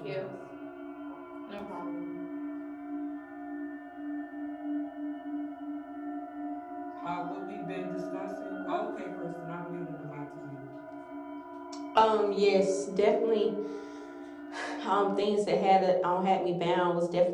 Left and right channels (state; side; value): identical; both; correlation 1.00